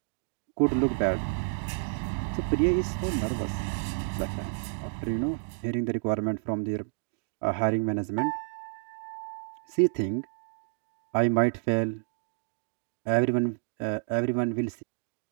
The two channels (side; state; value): left; silent; digital silence